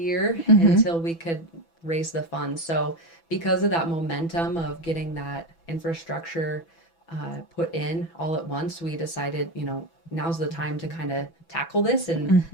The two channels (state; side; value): late; right; 6.0 ms